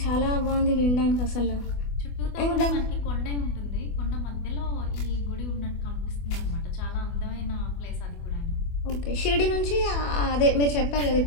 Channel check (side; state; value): right; late; 24 ms